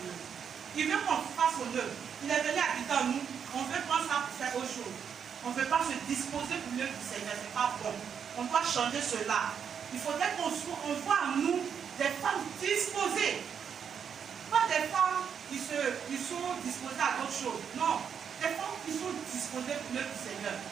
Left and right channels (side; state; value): left; quieter; 7.4 dB